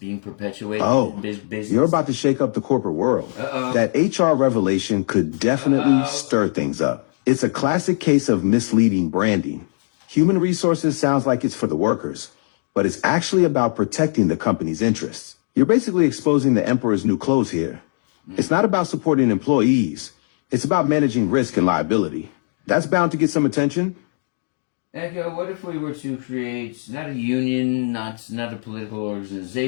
perpetuated in business? You're about to shake up the corporate world. Uh-oh. That HR revelation could definitely stir things up. It's a classic case of misleading branding. Human resources sounds like it's for the workers, but it's actually about protecting the company's interests. You're basically exposing the emperor's new clothes here. It's not about supporting employees. It's about managing risk and liability. That's bound to get some attention. Echo, what if we were to create not a union, not a political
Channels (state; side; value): silent; right; 65 dB below the other